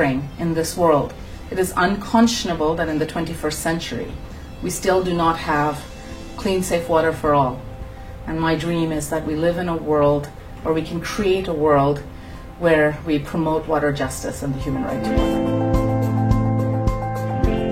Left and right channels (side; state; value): both; identical; correlation 1.00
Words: in this world. It is unconscionable that in the 21st century, we still do not have clean, safe water for all. And my dream is that we live in a world, or we can create a world, where we promote water justice and the human right to water.